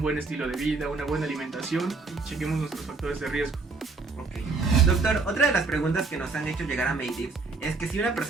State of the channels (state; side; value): quieter; left; 4.1 dB